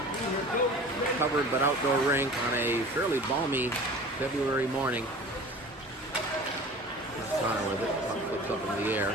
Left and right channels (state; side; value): normal; both; correlation 0.40